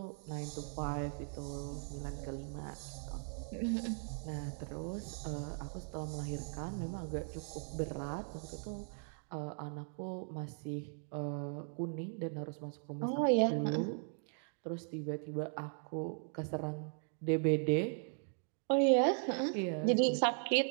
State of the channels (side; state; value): left; silent; 52 dB below the other